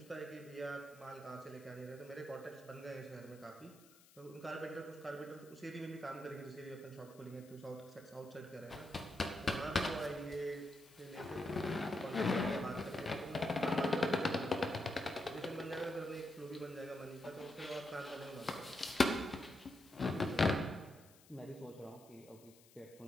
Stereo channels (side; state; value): left; noise; hiss, 24 dB below the sound